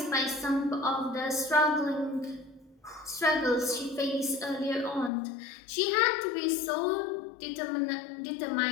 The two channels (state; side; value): drops out; right; at 5.1 s